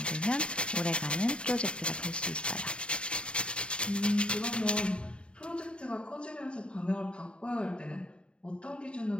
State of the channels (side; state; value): right; late; 0.055 ms